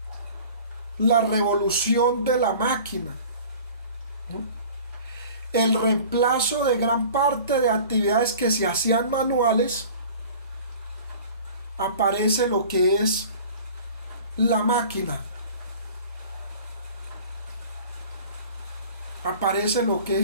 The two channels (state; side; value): inverted; both; correlation -0.44